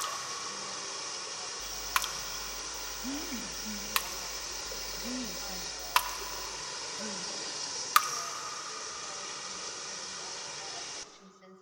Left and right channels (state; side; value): identical; both; correlation 1.00